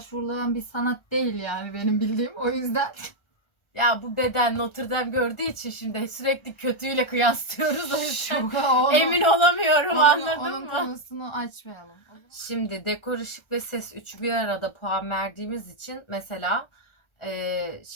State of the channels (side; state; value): right; late; 1.3 ms